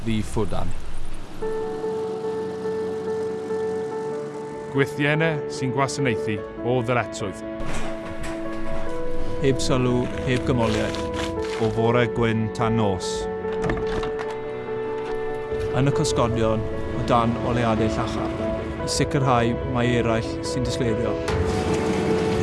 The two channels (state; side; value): identical; both; correlation 1.00